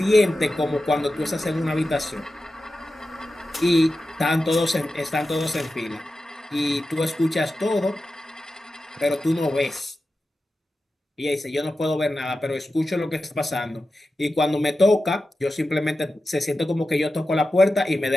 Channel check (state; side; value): normal; both; correlation 0.92